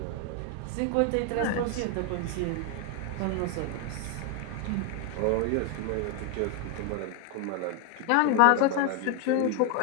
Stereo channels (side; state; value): both; different; correlation 0.01